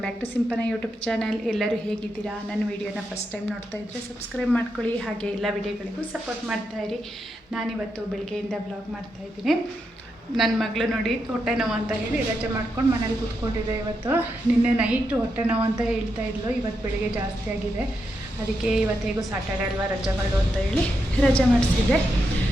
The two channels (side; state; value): both; normal; correlation 0.84